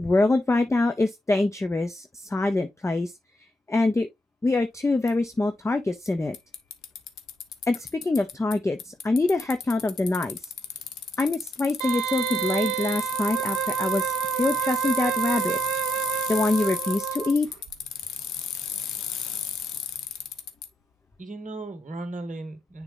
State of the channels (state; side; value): normal; both; correlation 0.81